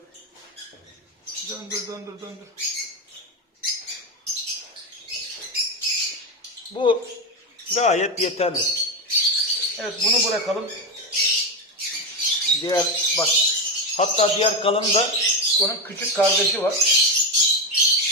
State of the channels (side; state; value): both; normal; correlation 0.13